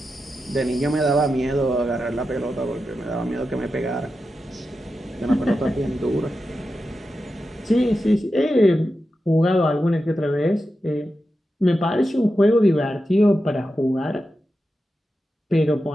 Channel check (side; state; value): both; normal; correlation 0.90